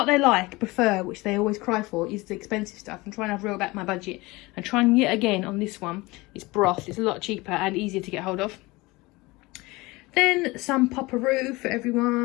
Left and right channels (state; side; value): quieter; right; 22.3 dB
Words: they prefer, which they always cry for, is the expensive stuff. I'm trying to reel back my budget and trying yet again on this one. It's broth. It's a lot cheaper and easier to get hold of. Then some Popperoo for